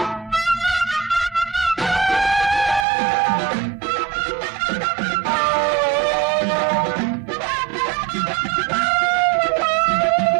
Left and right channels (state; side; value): drops out; left; at 2.9 s